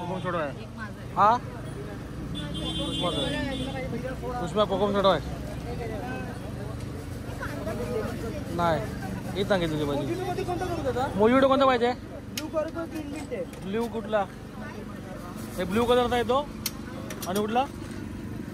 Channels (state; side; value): identical; both; correlation 1.00